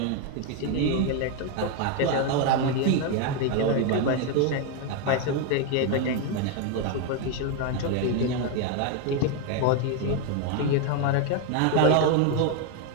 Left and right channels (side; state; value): both; different; correlation 0.01